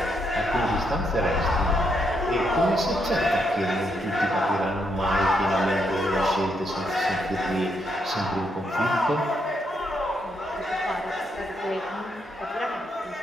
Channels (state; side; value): normal; both; correlation 0.77